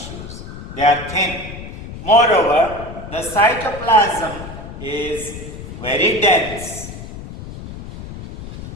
They are thin. Moreover, the cytoplasm is very dense.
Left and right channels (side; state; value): left; noise; rumble, 11 dB below the sound